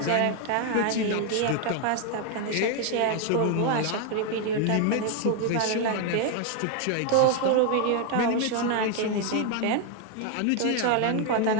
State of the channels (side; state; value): both; different; correlation 0.01